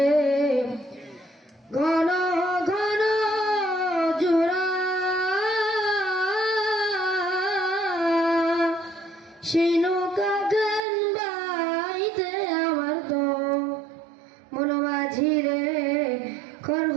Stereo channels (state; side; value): drops out; left; at 10.9 s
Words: ঘন ঘন জোড়া সেই নৌকা গান বাইতে আমার তো মন মাঝিরে খর